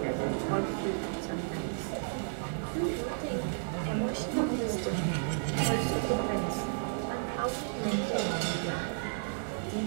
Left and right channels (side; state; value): left; silent; digital silence